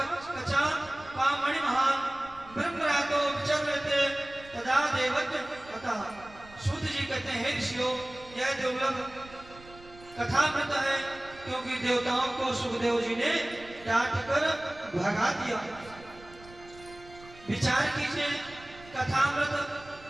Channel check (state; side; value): noise; right; rumble, 21 dB below the sound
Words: क्वा मणिमहान ब्रह्मरातो विचरते तदा देवत कथा। सूत जी कहते हैं ऋषियों, यह दुर्लभ कथामृत है, क्योंकि देवताओं को सुखदेव जी ने डांट कर भगा दिया। विचार कीजिए, कथामृत